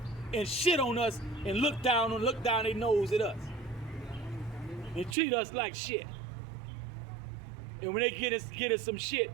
and shit on us and look down their nose at us. And treat us like shit. And when they get us some shit,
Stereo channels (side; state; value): left; drops out; at 5.2 s